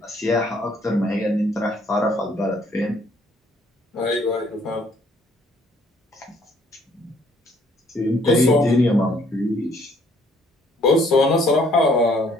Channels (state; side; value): normal; both; correlation 0.63